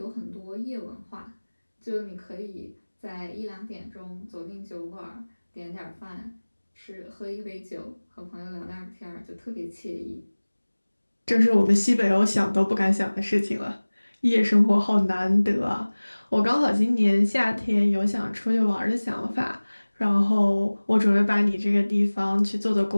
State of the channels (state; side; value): inverted; both; correlation -1.00